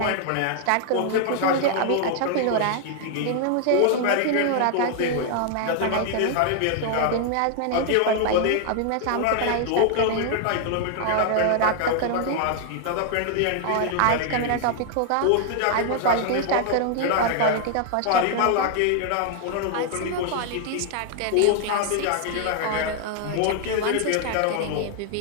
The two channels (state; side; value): different; both; correlation 0.00